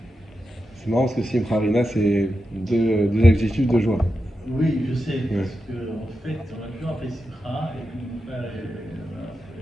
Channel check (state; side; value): normal; both; correlation 0.89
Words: C'est marrant parce que Simcha Rina, c'est deux adjectifs de joie. Oui, je sais, Ouais. parce qu'en fait, on a toujours appelé Simcha, et puis mon frère